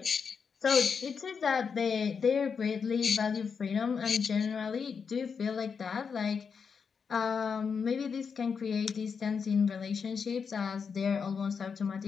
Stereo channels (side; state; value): right; quieter; 6.0 dB